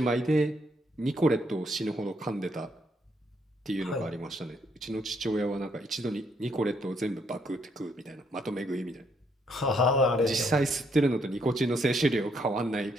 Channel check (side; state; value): both; normal; correlation 0.72